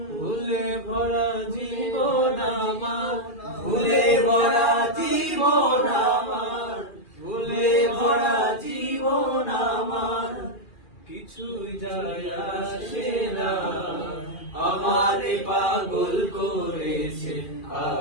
ভুলে ভরা জীবন আমার, ভুলে ভরা জীবন আমার, ভুলে ভরা জীবন আমার, কিছুই যায় আসে না, আমারে পাগল করেছে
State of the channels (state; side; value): late; right; 2.4 ms